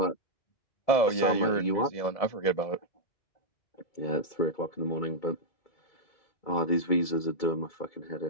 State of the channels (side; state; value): right; late; 2.3 ms